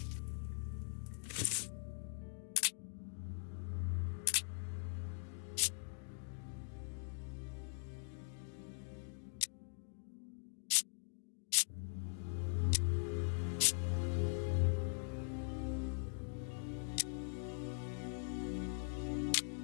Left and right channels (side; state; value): right; silent; digital silence